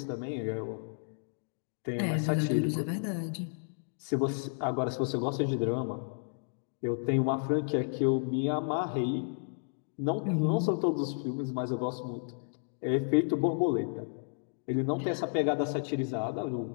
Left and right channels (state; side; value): silent; right; digital silence